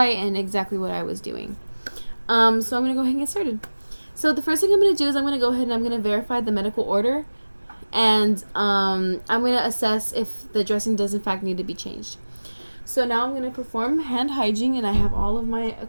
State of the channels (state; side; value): inverted; both; correlation -1.00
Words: and exactly what I was doing. So I'm going to go ahead and get started. So the first thing I'm going to do is I'm going to go ahead and I'm going to verify the medical order, and I'm going to assess if the dressing does in fact need to be changed. So now I'm going to perform hand hygiene, and I have all of my